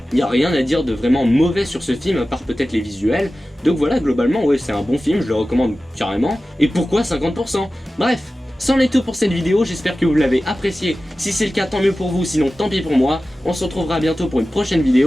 y a rien à dire de vraiment mauvais sur ce film à part peut-être les visuels. Donc voilà, globalement ouais c'est un bon film, je le recommande carrément. Et pourquoi 50%? Bref, c'en est tout pour cette vidéo, j'espère que vous l'avez apprécié. Si c'est le cas tant mieux pour vous, sinon tant pis pour moi. On se retrouvera bientôt pour une prochaine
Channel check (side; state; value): both; normal; correlation 0.95